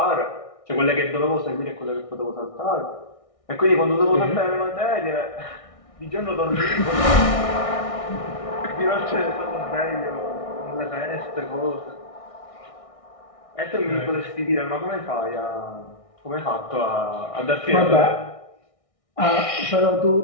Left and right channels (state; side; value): late; right; 1.6 ms